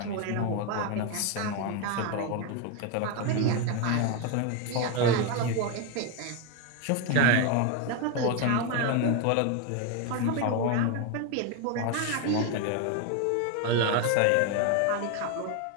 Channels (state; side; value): different; both; correlation 0.02